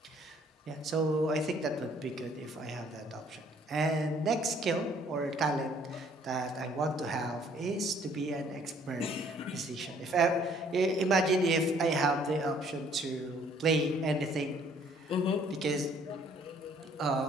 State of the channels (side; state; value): both; normal; correlation 0.61